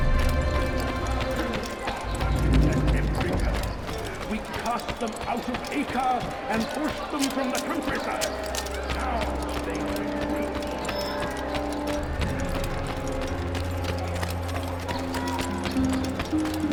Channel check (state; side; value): identical; both; correlation 1.00